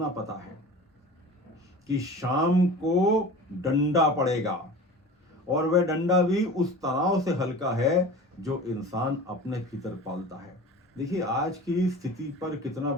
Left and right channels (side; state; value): both; normal; correlation 0.37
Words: पता है कि शाम को डंडा पड़ेगा, और वह डंडा भी उस तनाव से हल्का है जो इंसान अपने भीतर पालता है। देखिए आज की स्थिति पर कितना